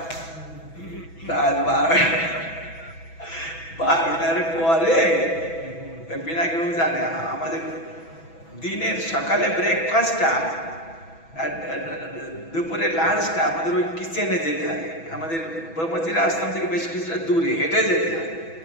রাত 12টার পরে পিনাকি বাবু জানে আমাদের দিনের সকালে ব্রেকফাস্টটা আর দুপুরে লাঞ্চটা আমাদের ওই কিচেনে যেতে হয়। আমাদের ব্রহ্মচিরা আশ্রম থেকে বেশ কিছুটা দূরে হেঁটে যেতে হয়।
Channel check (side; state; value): right; late; 6.1 ms